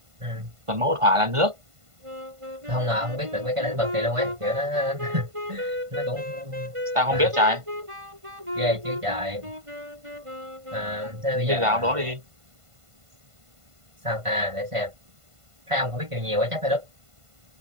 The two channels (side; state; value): left; late; 1.5 ms